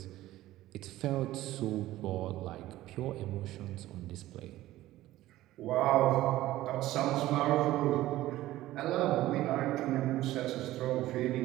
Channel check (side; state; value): left; quieter; 15.6 dB